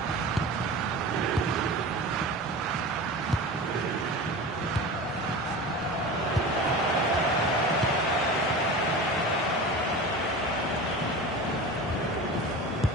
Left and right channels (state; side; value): normal; both; correlation 0.32